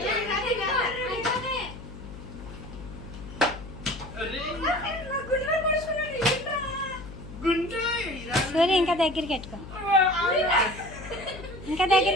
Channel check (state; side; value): noise; left; hum, 13 dB below the sound